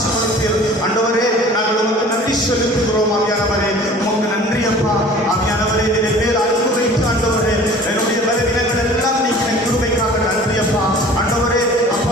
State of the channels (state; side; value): normal; both; correlation 0.46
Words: ஆண்டவரே. நாங்கள் உமக்கு நன்றி செலுத்துகிறோம் ஆவியானவரே. உமக்கு நன்றி அப்பா. ஆவியானவரே, என்னுடைய மேல் அன்பு வைத்து ஆண்டவரே, என்னுடைய பலவீனங்கள் எல்லாம் நீங்க கிருபைக்காக நன்றி அப்பா. ஆண்டவரே